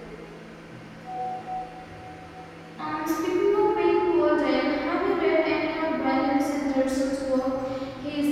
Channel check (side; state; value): both; identical; correlation 1.00